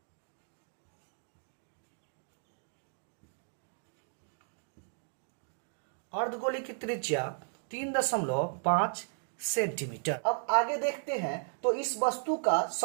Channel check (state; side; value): silent; left; digital silence